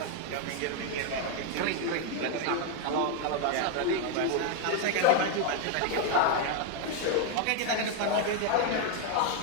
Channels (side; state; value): both; different; correlation 0.01